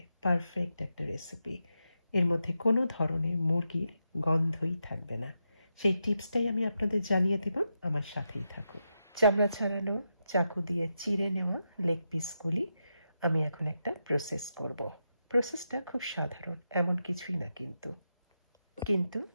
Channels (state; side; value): inverted; both; correlation -0.86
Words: পারফেক্ট একটা রেসিপি। এর মধ্যে কোনো ধরনের মুরগির গন্ধই থাকবে না। সেই টিপসটাই আমি আপনাদের জানিয়ে দেব, আমার সাথেই থাকুন। চামড়া ছাড়ানো চাকু দিয়ে চিড়ে নেওয়া লেগ পিসগুলি আমি এখন একটা প্রসেস করব। প্রসেসটা খুব সাধারণ, এমন কিছুই না, কিন্তু